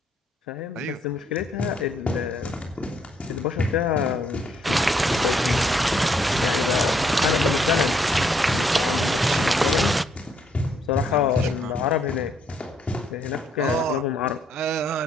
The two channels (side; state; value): both; normal; correlation 0.70